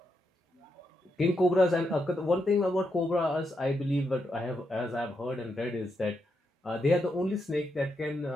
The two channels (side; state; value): both; normal; correlation 0.83